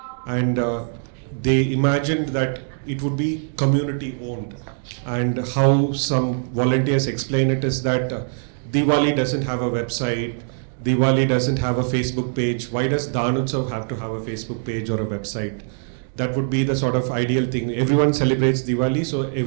and they imagined that it would be community owned. And how some volunteers explain it is that Diwali doesn't have a website, Diwali doesn't have a Facebook page. Why does Danutsav have to have a Facebook page or a website? That would be the sort of ideal thing. Everyone celebrates Diwali, so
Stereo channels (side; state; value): left; silent; digital silence